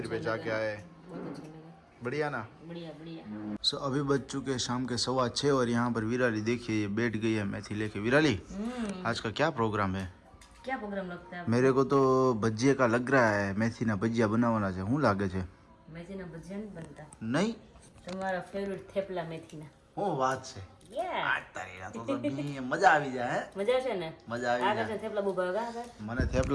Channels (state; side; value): identical; both; correlation 1.00